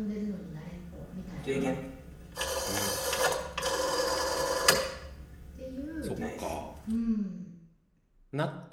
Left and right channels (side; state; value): both; identical; correlation 1.00